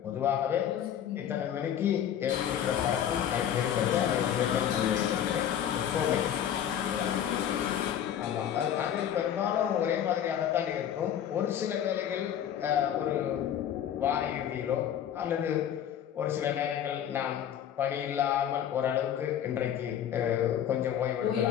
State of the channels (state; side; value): quieter; right; 9.8 dB